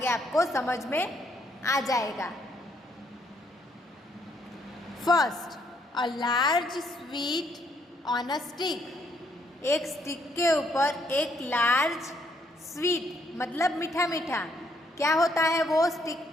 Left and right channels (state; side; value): normal; both; correlation 0.70